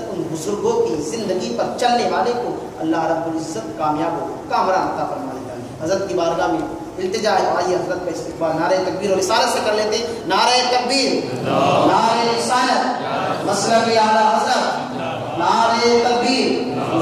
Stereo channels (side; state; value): both; identical; correlation 1.00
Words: ان بزرگوں کی زندگی پر چلنے والے کو اللہ رب العزت کامیاب و کامران عطا فرما دیتا ہے۔ حضرت کی بارگاہ میں التجا ہے، آئیے حضرت کا استقبال نعرہ تکبیر اور رسالت سے کر لیتے ہیں۔ نعرہ تکبیر، نعرہ رسالت، مسلک اعلی حضرت، نعرہ تکبیر،